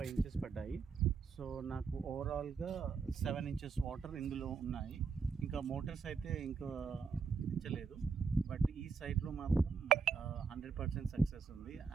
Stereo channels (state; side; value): quieter; left; 5.5 dB